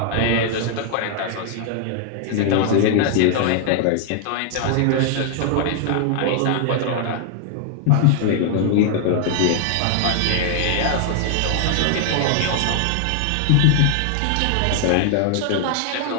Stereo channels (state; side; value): different; both; correlation 0.00